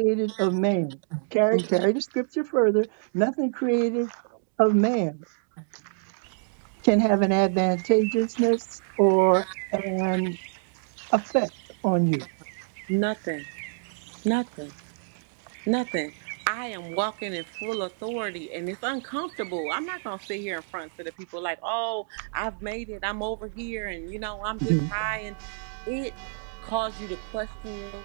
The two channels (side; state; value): left; silent; digital silence